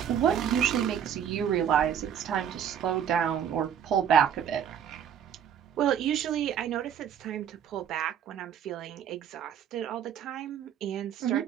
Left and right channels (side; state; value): left; quieter; 8.9 dB